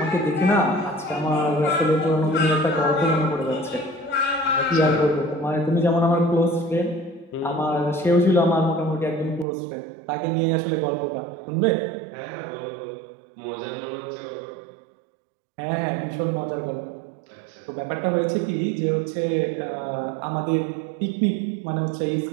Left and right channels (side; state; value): left; drops out; at 9.5 s